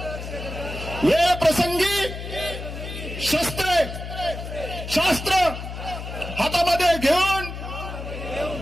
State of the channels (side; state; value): left; noise; hum, 8 dB below the sound